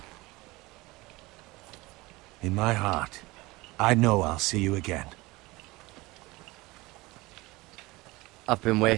In my heart, I know I'll see you again. I've been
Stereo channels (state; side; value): quieter; left; 21.6 dB